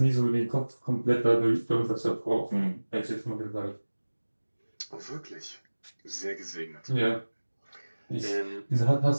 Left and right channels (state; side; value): inverted; both; correlation -1.00